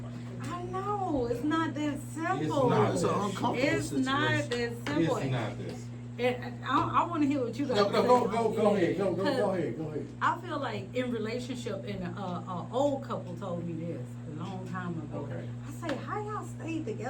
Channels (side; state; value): both; identical; correlation 1.00